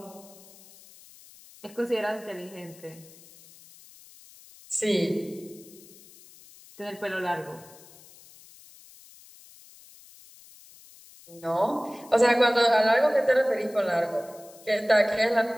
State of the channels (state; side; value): noise; left; hiss, 23 dB below the sound